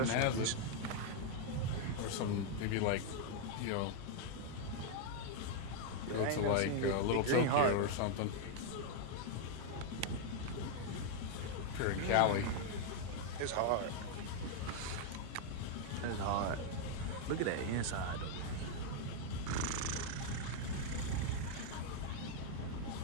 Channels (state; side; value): different; both; correlation 0.00